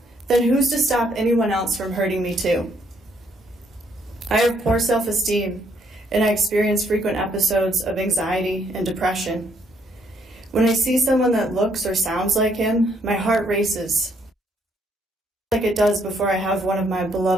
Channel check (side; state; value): both; normal; correlation 0.70